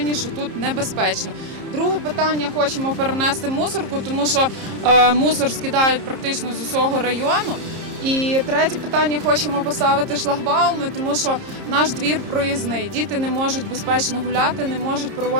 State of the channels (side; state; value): left; late; 30 ms